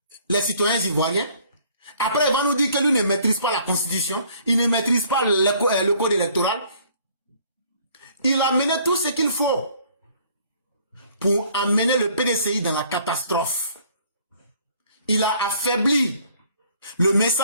les citoyens ivoiriens. Après, il va nous dire que lui ne maîtrise pas la Constitution. Il ne maîtrise pas le code électoral. Il a mené tout ce qu'il faut pour amener le PDCI dans la catastrophe. Il a affaibli le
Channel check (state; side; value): inverted; both; correlation -0.59